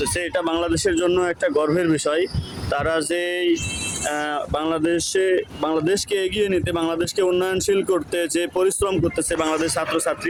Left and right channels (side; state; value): both; identical; correlation 1.00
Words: এটা বাংলাদেশের জন্য একটা গর্বের বিষয়। তারা যে বাংলাদেশকে এগিয়ে নিতে, বাংলাদেশকে উন্নয়নশীল করতে যে পরিশ্রম করতেছে বাংলাদেশ ছাত্রছাত্রী,